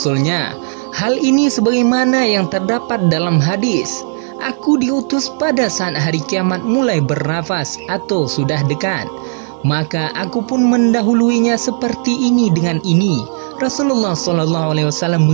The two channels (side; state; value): left; silent; digital silence